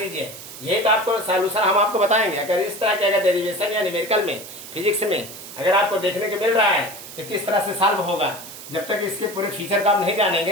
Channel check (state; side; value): noise; right; hiss, 14 dB below the sound